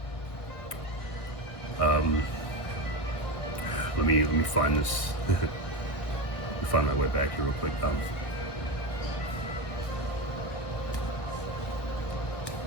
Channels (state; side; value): late; right; 1.4 ms